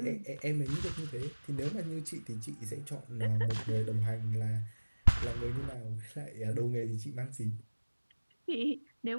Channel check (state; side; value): inverted; both; correlation -1.00